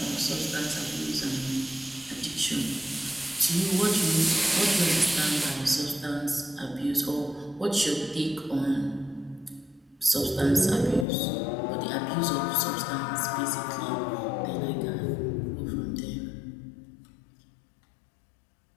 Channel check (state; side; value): drops out; right; at 11.1 s